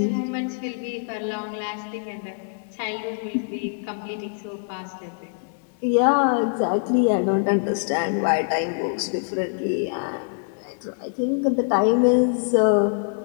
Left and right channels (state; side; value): silent; right; digital silence